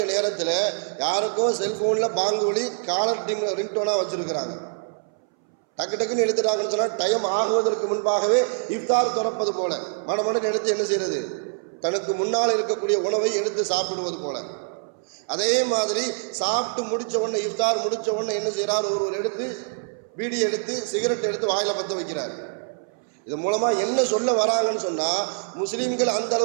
நேரத்தில் யாருக்கோ செல்ஃபோனில் பாங்கு ஒலி காலர் ரிங்டோனாக வச்சுருக்கிறாங்க. டக்கு டக்குன்னு எடுத்துட்டாங்கன்னு சொன்னால் டைம் ஆகுவதற்கு முன்பாகவே இஃப்தார் திறப்பது போல மனமனுக்கு எடுத்து என்ன செய்கிறது, தனக்கு முன்னால் இருக்கக்கூடிய உணவை எடுத்து சாப்பிடுவது போல. அதே மாதிரி சாப்பிட்டு முடித்த உடனே இஃப்தார் முடித்த உடனே என்ன செய்கிறார், ஒருவர் எடுத்து பீடி எடுத்து சிகரெட் எடுத்து வாயில் பற்ற வைக்கிறார். இது மூலமாக என்ன சொல்ல வராங்கன்னு சொன்னால், முஸ்லீம்கள் அந்த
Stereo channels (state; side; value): silent; left; 62 dB below the other